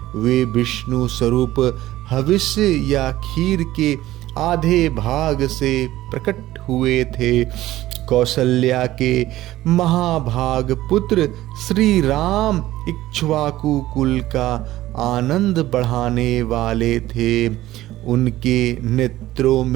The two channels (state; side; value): quieter; left; 15.6 dB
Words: वे विष्णु स्वरूप हविष्य या खीर के आधे भाग से प्रकट हुए थे। कौशल्या के महाभाग पुत्र श्री राम इक्ष्वाकु कुल का आनंद बढ़ाने वाले थे। उनके नेत्रों